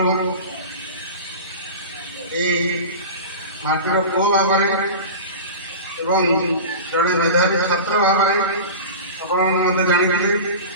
ଏଇ ମାଟିର ପୁଅ ଭାବରେ ଏବଂ ଜଣେ ମେଧାବୀ ଛାତ୍ର ଭାବରେ ଆପଣମାନେ ମୋତେ ଜାଣିଥିଲେ।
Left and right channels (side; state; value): both; inverted; correlation -0.31